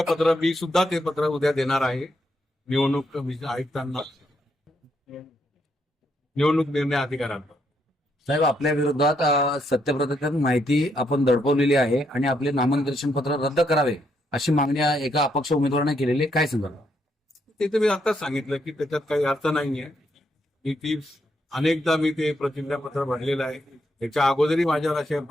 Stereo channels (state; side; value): normal; both; correlation 0.76